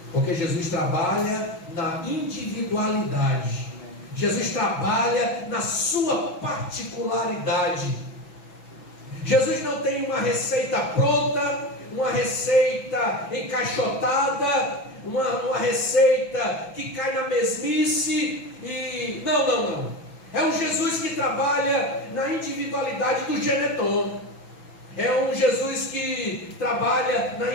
porque Jesus trabalha na individualidade. Jesus trabalha na sua particularidade. Jesus não tem uma receita pronta, uma receita encaixotada, uma receita que cai na mesmice e... Não. É um Jesus que trabalha na individualidade do Geneton. É um Jesus que trabalha na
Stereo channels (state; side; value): late; right; 6.0 ms